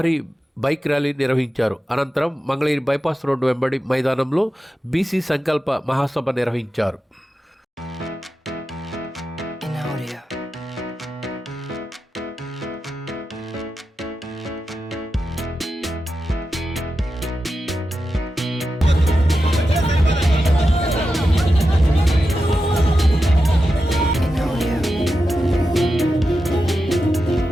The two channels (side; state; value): both; normal; correlation 0.90